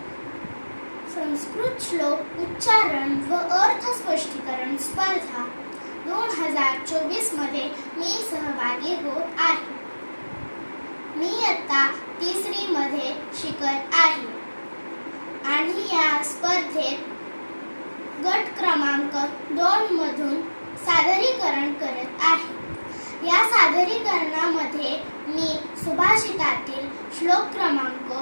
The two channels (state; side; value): inverted; both; correlation -1.00